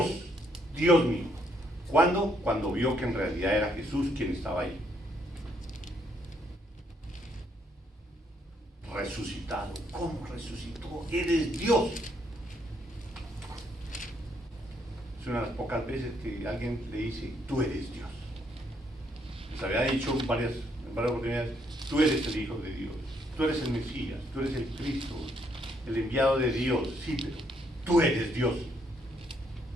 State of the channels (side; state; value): both; normal; correlation 0.72